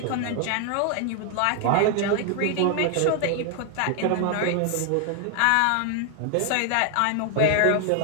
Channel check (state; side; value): different; both; correlation 0.00